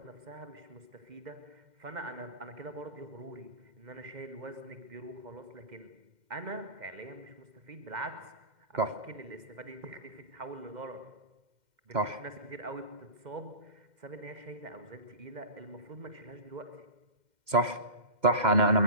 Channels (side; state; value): left; late; 2.1 ms